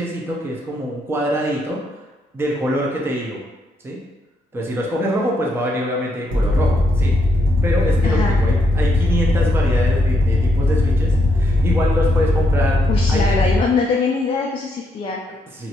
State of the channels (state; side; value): normal; both; correlation 0.78